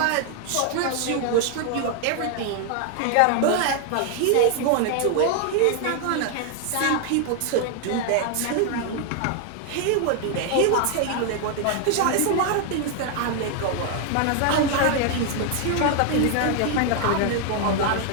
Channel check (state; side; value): different; both; correlation 0.00